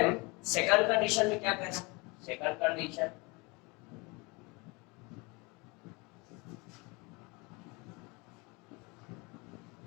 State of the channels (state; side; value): quieter; right; 27.4 dB